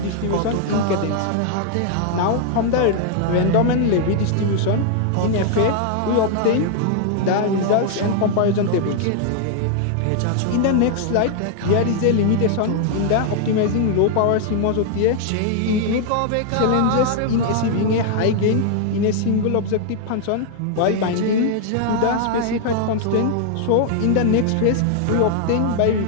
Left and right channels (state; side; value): different; both; correlation 0.00